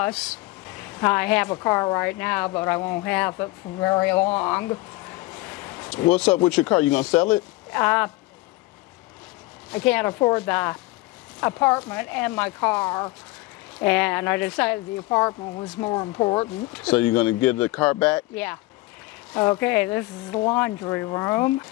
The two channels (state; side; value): quieter; right; 20.8 dB